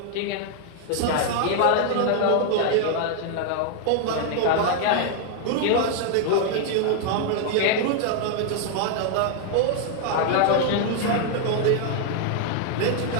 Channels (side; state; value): both; different; correlation 0.00